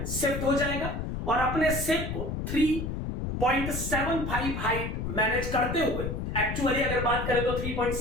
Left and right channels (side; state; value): left; noise; rumble, 4 dB below the sound